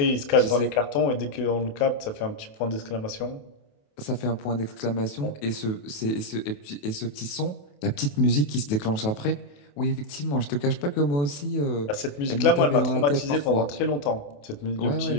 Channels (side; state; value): right; late; 28 ms